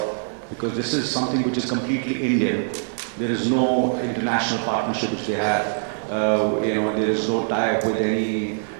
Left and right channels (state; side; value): silent; left; digital silence